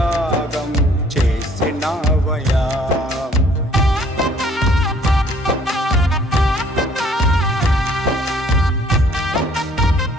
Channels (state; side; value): normal; both; correlation 0.59